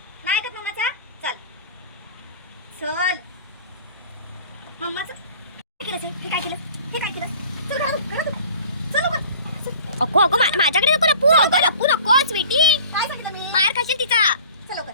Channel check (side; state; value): both; inverted; correlation -0.46